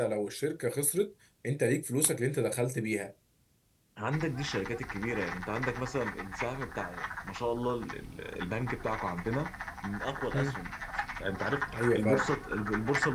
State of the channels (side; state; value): both; identical; correlation 1.00